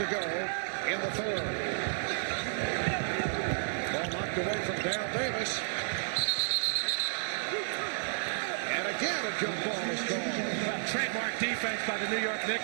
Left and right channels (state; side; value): silent; left; digital silence